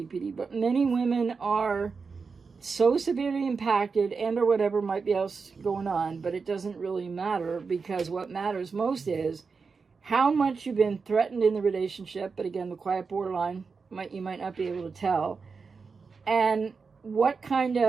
but many women are so severely impacted and or whatever might be else going on, but it doesn't really matter, because what matters most is how much you've been threatened in the relationship. But again, the quiet borderline, you might not be able to tell. And what kind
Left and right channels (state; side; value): quieter; left; 5.0 dB